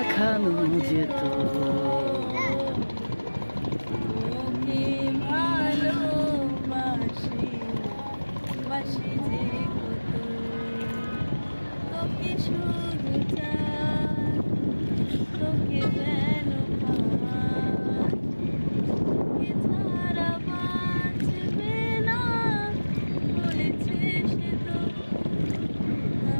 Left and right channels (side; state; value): both; inverted; correlation -1.00